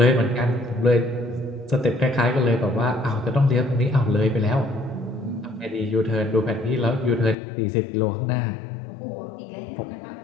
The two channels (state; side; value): drops out; right; at 7.4 s